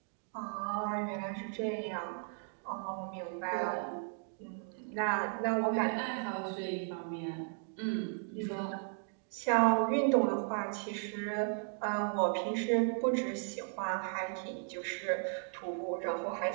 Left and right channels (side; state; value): left; silent; 54 dB below the other